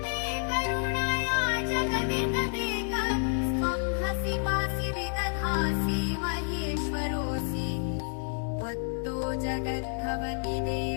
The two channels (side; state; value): right; silent; 58 dB below the other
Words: करुणया जगदितदेक स्वं हसि पासि विदधासि महेश्वरोऽसि त्वत्तो जगद्भवति